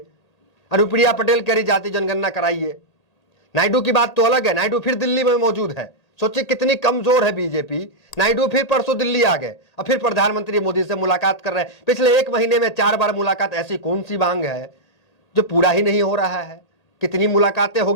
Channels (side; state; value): right; late; 1.8 ms